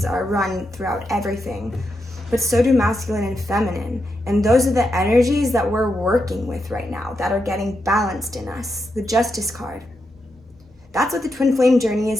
are run throughout everything, but so do masculine and feminine. And those are the energies that we're working with right now, that are getting balanced in us. The Justice card. That's what the twin flame journey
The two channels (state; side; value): normal; both; correlation 0.85